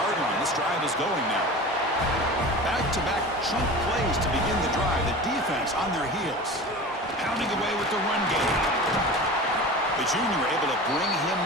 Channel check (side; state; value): both; normal; correlation 0.34